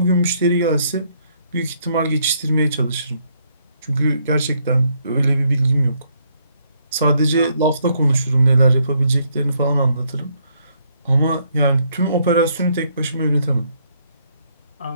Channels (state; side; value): inverted; both; correlation -0.71